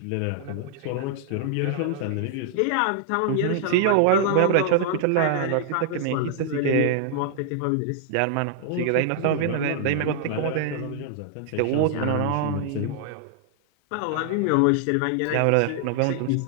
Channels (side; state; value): both; different; correlation -0.01